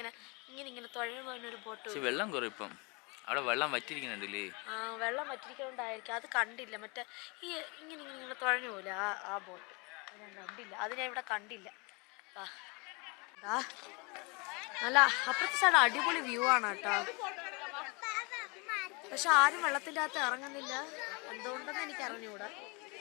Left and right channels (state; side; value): quieter; right; 29.5 dB